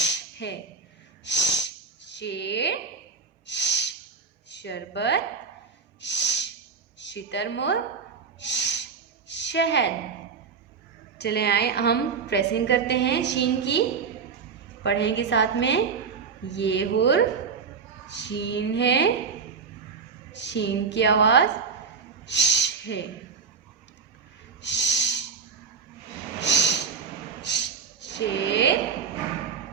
है। शेर, शरबत, शितरमुर्ग, शहद। चले आए हम प्रेसिंग करते हैं शीन की, पढ़ेंगे साथ में। ये हुर शीन है, शीन की आवाज श है। शेर,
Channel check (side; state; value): left; quieter; 5.6 dB